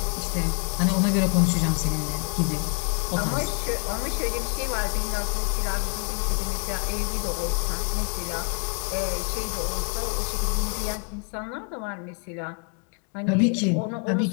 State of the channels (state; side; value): quieter; right; 39.9 dB